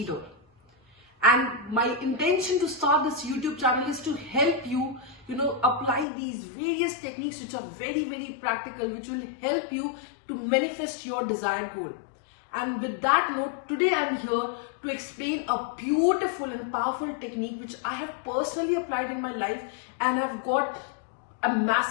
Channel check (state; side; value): drops out; right; at 6.1 s